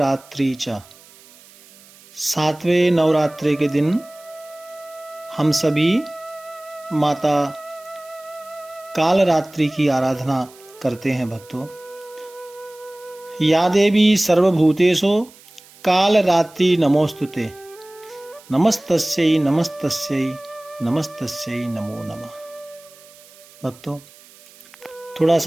च, सातवें नवरात्रि के दिन हम सभी माता काल रात्रि की आराधना करते हैं। भक्तों, या देवी सर्वभूतेषु काल रात्रि नमोस्तुते, नमस्तस्यै नमस्तस्यै नमस्तस्यै नमो नमः। भक्तों, थोड़ा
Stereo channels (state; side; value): noise; right; hiss, 24 dB below the sound